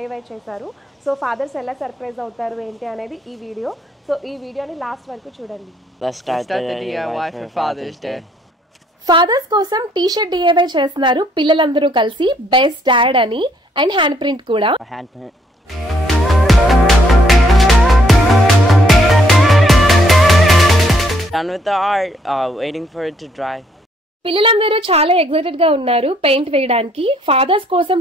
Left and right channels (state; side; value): normal; both; correlation 0.68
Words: చేశారు. సో ఫాదర్స్ ఎలా సర్ప్రైజ్ అవుతారు ఏంటి అనేది ఈ వీడియో. సో ఈ వీడియోని లాస్ట్ వరకు చూడండి. Let's start the DIY for Father's Day. Father's కోసం టీ-షర్ట్ DIY చేస్తున్నారు పిల్లలందరూ కలిసి, బెస్ట్ డాడ్ అని, అండ్ హ్యాండ్ ప్రింట్ కూడా. Done with the art, waiting for it to dry. పిల్లలందరూ చాలా ఎక్సైటెడ్ గా ఉన్నారు పెయింట్ వేయడానికి. ఫాదర్స్ కోసం